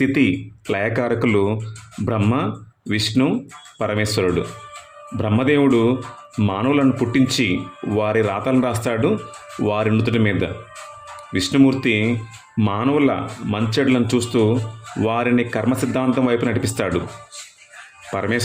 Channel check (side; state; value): both; identical; correlation 1.00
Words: లయకారకులు బ్రహ్మ, విష్ణు, పరమేశ్వరుడు. బ్రహ్మదేవుడు మానవులను పుట్టించి వారి రాతలను రాస్తాడు వారి నుదుటి మీద. విష్ణుమూర్తి మానవుల మంచెడులను చూస్తూ వారిని కర్మ సిద్ధాంతం వైపు నడిపిస్తాడు.